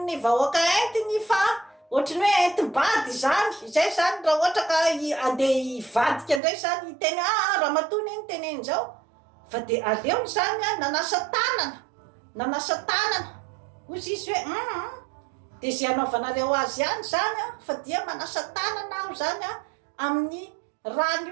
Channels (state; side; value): drops out; left; at 6.4 s